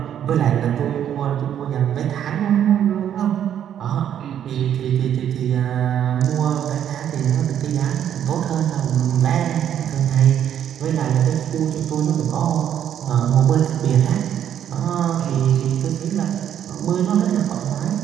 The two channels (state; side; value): quieter; left; 9.9 dB